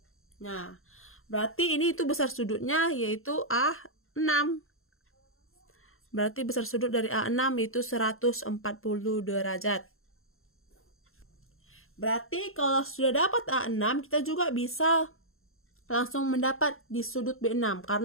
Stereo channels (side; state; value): right; late; 0.61 ms